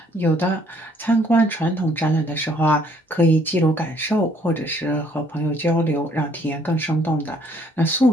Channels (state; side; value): normal; both; correlation 0.63